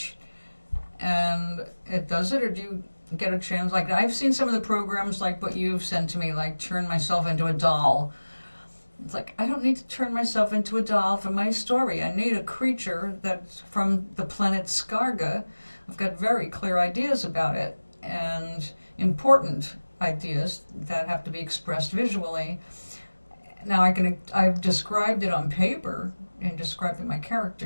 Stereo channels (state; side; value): inverted; both; correlation -1.00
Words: and it does it. Or do you get a chance? Like, I've seen some of the programs like what you've sent to me, like turn myself into a doll. It's like, I don't need to turn myself into a doll for my story. I need a creature that's from the planet Skarga. I've got very clear ideas about it and important ideas that have to be expressed visually. Now I've described it on paper and described my